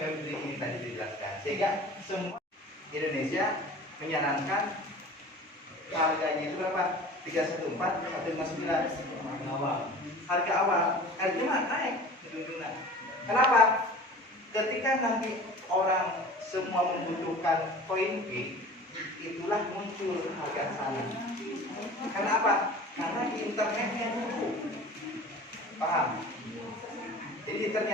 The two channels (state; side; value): normal; both; correlation 0.41